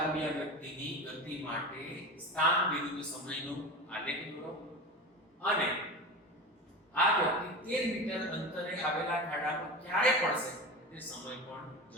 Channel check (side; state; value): both; normal; correlation 0.27